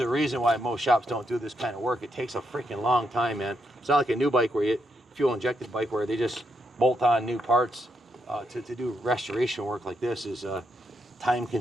reason why most shops don't do this kind of work. It takes a freaking long time, man. It's not like a new bike where fuel injected bike where they just bolt on new parts. To do restoration work like this is time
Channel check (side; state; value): both; normal; correlation 0.79